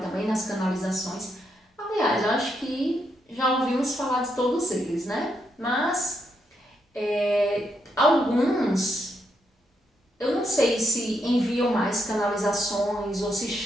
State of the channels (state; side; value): normal; both; correlation 0.79